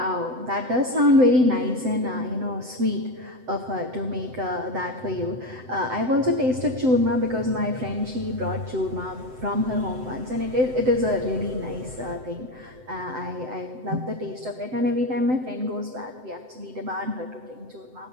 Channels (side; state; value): left; late; 7.8 ms